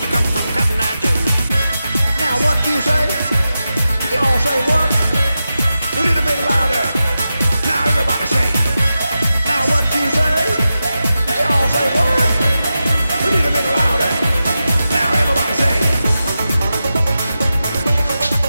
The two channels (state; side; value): inverted; both; correlation -0.91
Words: Say? You all say what? A little bit louder. Now everybody say. Now what you say? You all say what? A little bit louder. Now everybody say.